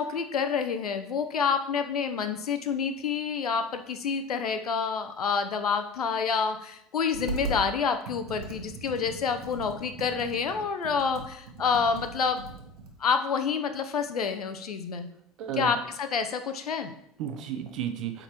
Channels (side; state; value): right; quieter; 4.8 dB